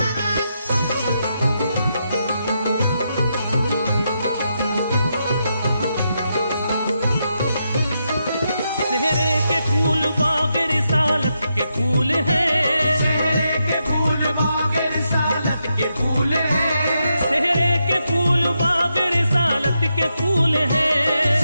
सेहरे के फूल बाग रिसालत के फूल हैं, सेहरे के फूल बाग रिसालत के फूल हैं, सेहरे के फूल बाग रिसालत के फूल हैं,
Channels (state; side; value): inverted; both; correlation -0.83